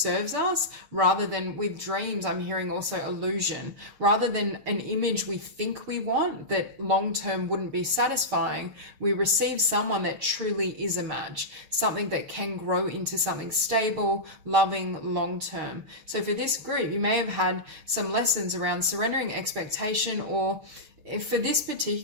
us, rather than with dreams, I'm hearing also illusion, rather than an image we think we want that long-term wouldn't be satisfying. We receive someone that truly is a match, something that can grow into something stable, loving, long-term. So for this group, you may have had some lessons around surrendering expectation, or if for this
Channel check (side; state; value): left; late; 6.7 ms